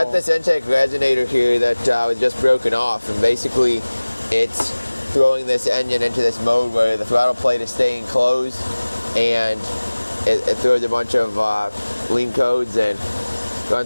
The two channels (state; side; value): inverted; both; correlation -1.00